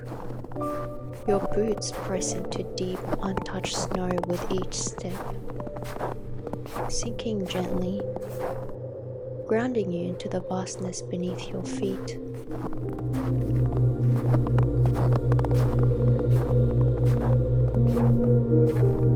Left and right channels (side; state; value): both; identical; correlation 1.00